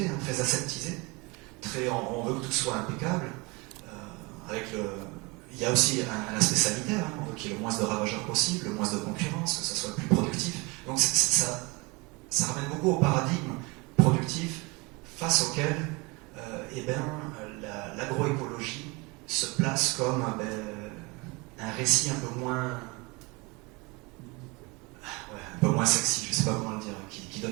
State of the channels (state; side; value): quieter; left; 26.5 dB